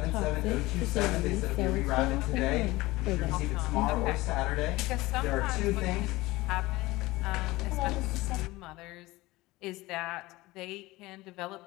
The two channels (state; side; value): quieter; right; 19.9 dB